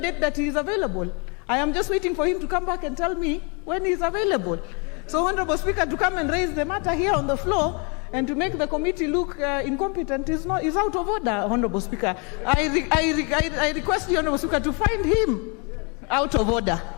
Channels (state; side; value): quieter; right; 34.4 dB